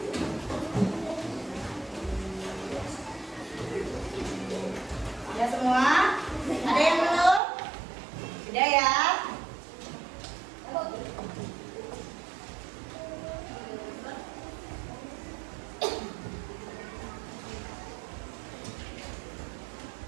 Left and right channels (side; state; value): left; drops out; at 7.4 s